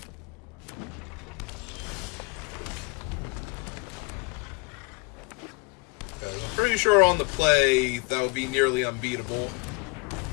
I'm pretty sure on the play, that would be nearly unbeatable.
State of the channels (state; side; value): quieter; right; 27.7 dB